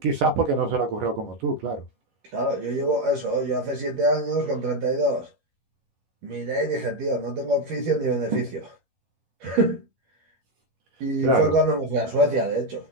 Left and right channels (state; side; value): late; left; 11 ms